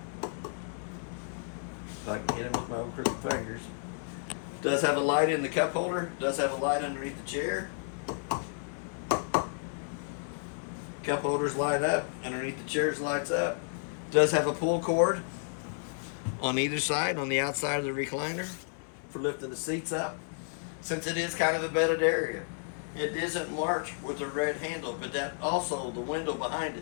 If I can hit him with my own crooked fingers. Does have a light in the cup holder. Does have a light underneath the chair. Cup holders light up. Underneath the chairs lights up. Does have a pull cord on either side, on the outside of the recliner for lifting the seats up. Since it is kind of a bedded area, it isn't marked with a red handle, but that also, the window behind it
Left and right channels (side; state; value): right; silent; 57 dB below the other